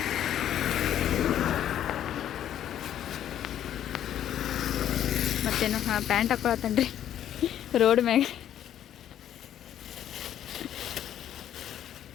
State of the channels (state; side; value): quieter; right; 10.7 dB